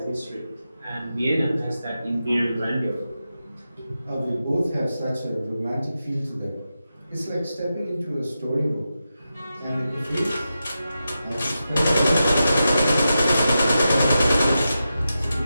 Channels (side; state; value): both; inverted; correlation -0.90